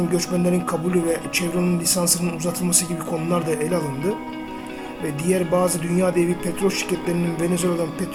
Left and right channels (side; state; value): both; identical; correlation 1.00